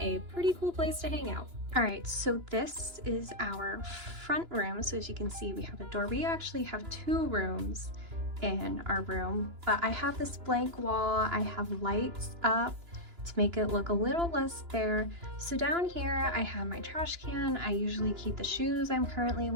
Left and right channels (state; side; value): late; left; 2.9 ms